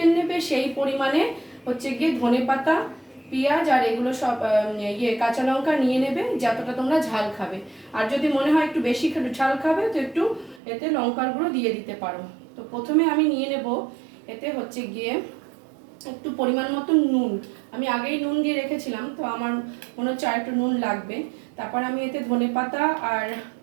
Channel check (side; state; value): left; drops out; at 10.6 s